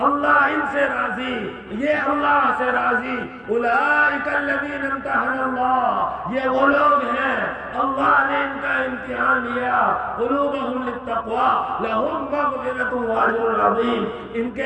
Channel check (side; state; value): both; identical; correlation 1.00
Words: اللہ ان سے راضی، یہ اللہ سے راضی۔ اولئک الذین امتحن اللہ، یہ وہ لوگ ہیں اللہ نے ان کا امتحان لیا۔ قلوبہم للتقوی لہم مغفرۃ واجر عظیم، ان